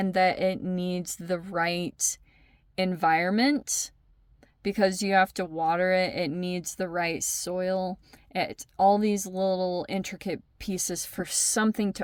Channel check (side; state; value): both; identical; correlation 1.00